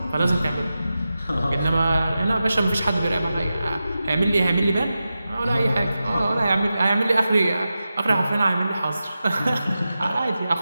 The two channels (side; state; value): both; inverted; correlation -0.92